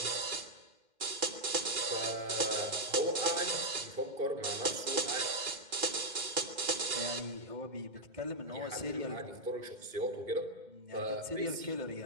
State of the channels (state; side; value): late; left; 2.1 ms